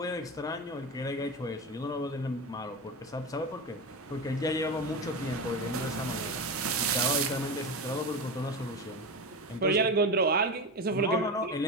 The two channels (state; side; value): normal; both; correlation 0.21